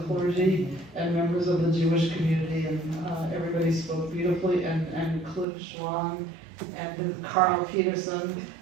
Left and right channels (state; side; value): drops out; left; at 5.5 s